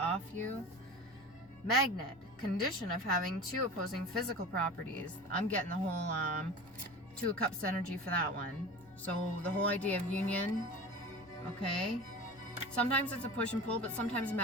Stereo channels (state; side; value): normal; both; correlation 0.34